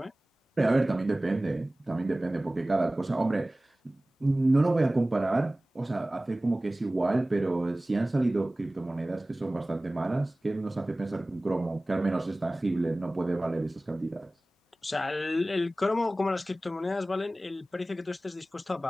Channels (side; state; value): both; normal; correlation 0.98